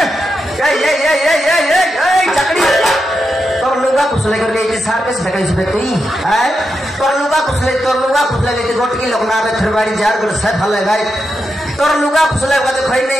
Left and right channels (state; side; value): normal; both; correlation 0.86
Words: ये चकड़ी तोर लुगा कुसले कर ले सार पे से कहीं से तई है तोर लुगा कुसले ले गोट की लोग ना रे थरवाड़ी जार गुड़ से फले गए तोर लुगा कुसले का तो खई